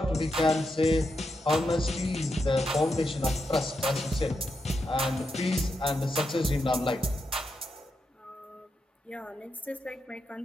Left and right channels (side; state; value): both; normal; correlation 0.84